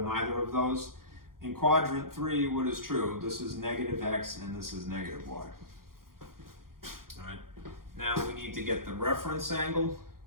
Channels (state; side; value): late; left; 0.92 ms